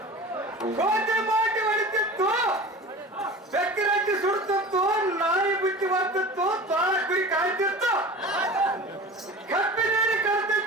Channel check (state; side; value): normal; both; correlation 0.36